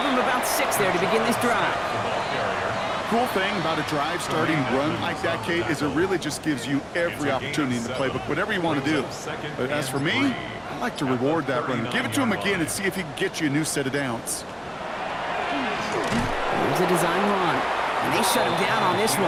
him about 6 there to begin this drive. Cool thing about a drive starting run like that, Kate, is it really just gives you every opportunity in the playbook, whatever you want to do. But as for me, I like to reward that run. Give it to him again and see if he can get you a new set of downs. Here's a design run. And they shut him down on this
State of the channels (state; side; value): identical; both; correlation 1.00